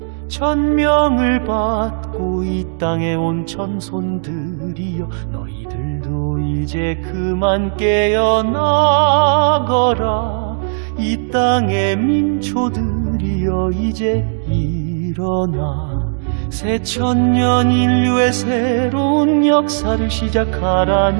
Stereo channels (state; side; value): silent; left; digital silence